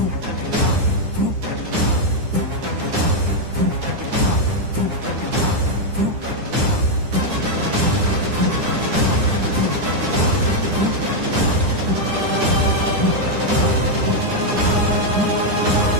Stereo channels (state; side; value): late; left; 9.9 ms